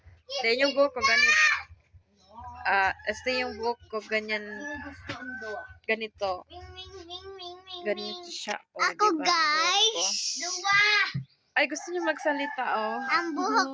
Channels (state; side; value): identical; both; correlation 1.00